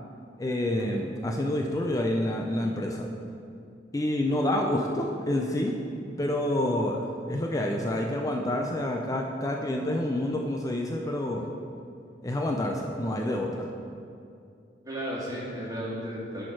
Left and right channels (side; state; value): both; normal; correlation 0.68